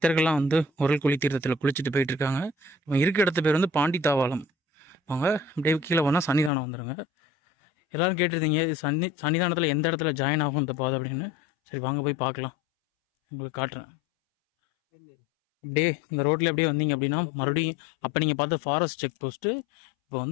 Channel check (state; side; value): drops out; right; at 6.5 s